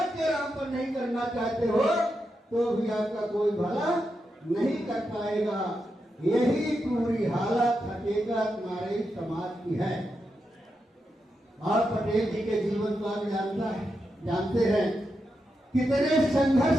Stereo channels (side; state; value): both; normal; correlation 0.86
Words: के नाम पर नहीं करना चाहते हो तो भी आपका कोई भला नहीं कर पाएगा। यही पूरी हालत हकीकत हमारे समाज की है। और पटेल जी के जीवन को आप जानते हैं, कितने संघर्ष